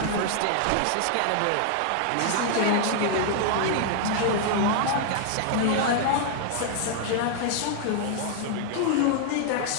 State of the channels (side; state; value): both; different; correlation 0.00